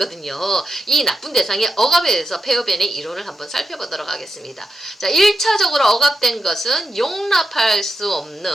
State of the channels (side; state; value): both; normal; correlation 0.87